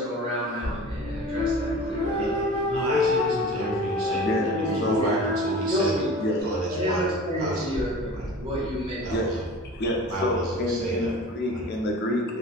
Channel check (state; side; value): normal; both; correlation 0.39